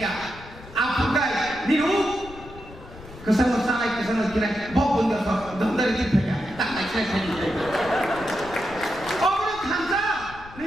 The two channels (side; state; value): left; noise; rumble, 17 dB below the sound